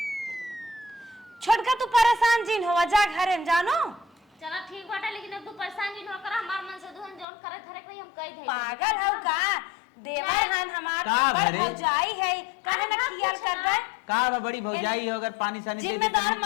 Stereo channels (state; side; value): drops out; right; at 7.2 s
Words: छोटका तू परेशान जिन होवा जा घरे में जानो। चलो ठीक बाटे लेकिन अब तू परेशान नहीं हो कर हमार मन से दुहन जोन करे थरे कोई हम कह दे। पागल हौ का देवर हन हमार बड़ भौजाई है काहे ना खियाल करबे। का बड़ी भौजाई हो अगर पानी सानी जिम्मेदार